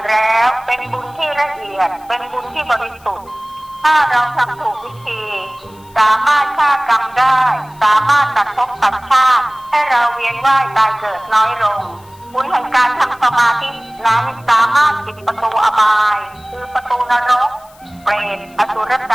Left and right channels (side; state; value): left; noise; hiss, 27 dB below the sound